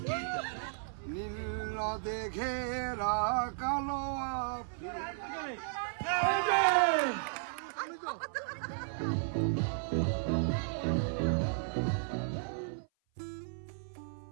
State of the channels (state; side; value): silent; left; 55 dB below the other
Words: নীল নদে ঘেরা কালো